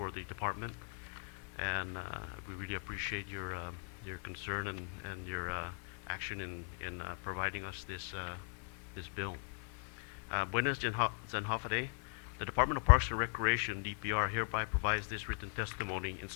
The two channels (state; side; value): quieter; right; 36.3 dB